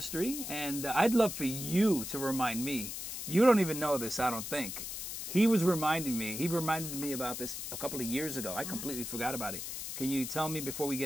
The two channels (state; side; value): noise; left; hiss, 6 dB below the sound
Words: and I'd love for you to remind me. You don't even know this, I don't think. He reminded me about this a couple of years ago. I completely forgot about it. Can you tell me before we